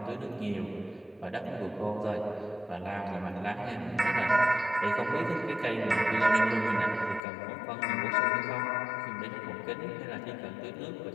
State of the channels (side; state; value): right; drops out; at 7.2 s